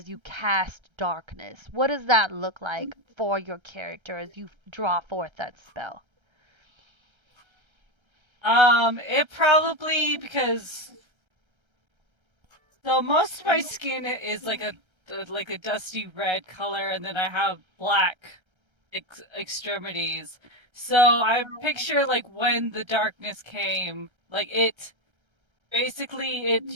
you cast darkness. What does that look like for your character as you draw forth that spell? It probably because so most of my skin is like a dusty red color, and then I have black extremities. So I picture like when the darkness came, like it basically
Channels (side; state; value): left; late; 1.3 ms